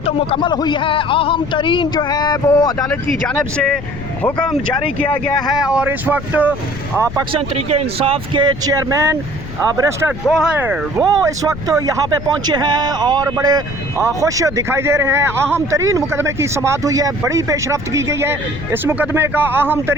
मुकम्मल हुई है। अहम तरीन जो है वो अदालत की जानिब से हुक्म जारी किया गया है और इस वक्त पाकिस्तान तहरीक इंसाफ के चेयरमैन बैरिस्टर गौहर वो इस वक्त यहाँ पे पहुँचे हैं और बड़े खुश दिखाई दे रहे हैं। अहम तरीन मुकदमे की समाअत हुई है, बड़ी पेशरफ्त की गई है। इस मुकदमे का अहम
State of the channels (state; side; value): noise; left; rumble, 11 dB below the sound